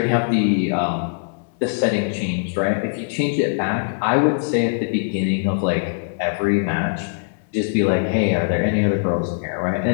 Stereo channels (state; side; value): silent; right; 65 dB below the other